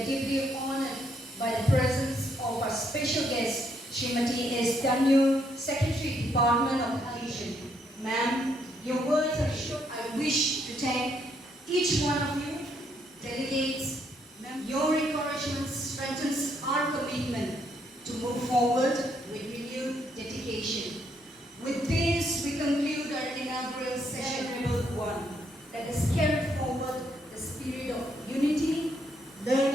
deeply honored by the presence of our special guest, Srimati S. Tainiu, Secretary, Department of Education. Ma'am, your words are short. I wish to thank each one of you, delegates. Your encouragement strengthens our commitment to move forward with renewed dedication. With this, we conclude our inaugural session number 1. Let us carry forward the spirit of unity,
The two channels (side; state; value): both; normal; correlation 0.73